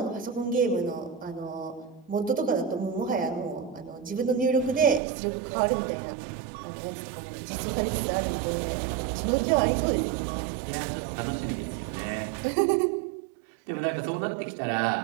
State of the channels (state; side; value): drops out; left; at 5.0 s